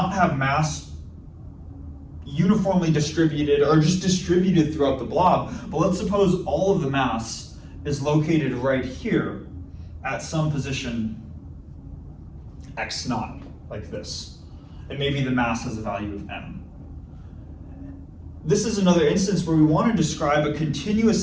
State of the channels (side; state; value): both; identical; correlation 1.00